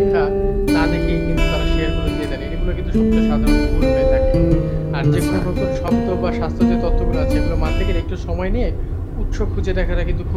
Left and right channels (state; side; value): identical; both; correlation 1.00